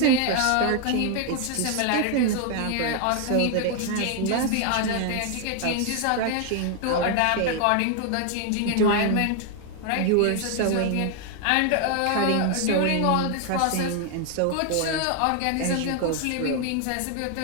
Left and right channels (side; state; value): both; different; correlation 0.00